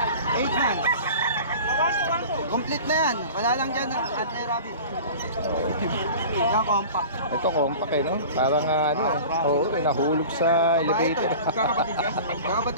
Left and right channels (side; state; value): both; inverted; correlation -0.38